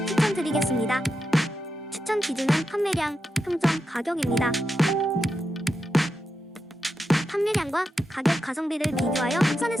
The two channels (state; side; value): normal; both; correlation 0.87